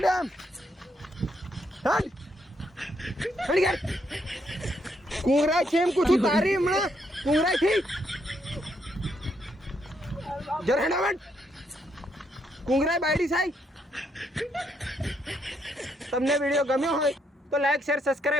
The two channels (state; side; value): normal; both; correlation 0.75